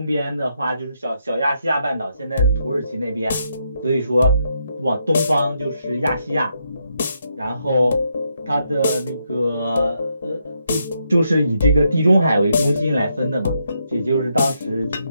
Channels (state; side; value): inverted; both; correlation -0.79